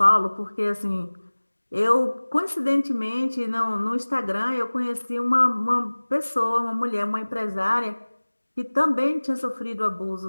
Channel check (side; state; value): both; inverted; correlation -1.00